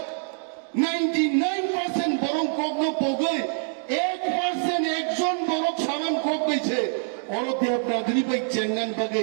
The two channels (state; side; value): silent; left; digital silence